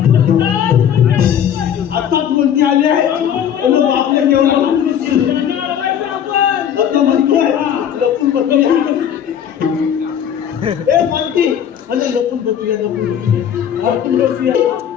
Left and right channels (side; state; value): right; quieter; 9.2 dB